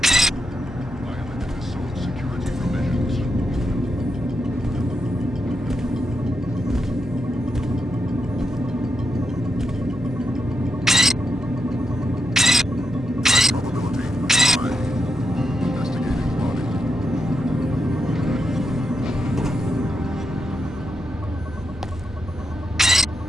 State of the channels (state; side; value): normal; both; correlation 0.84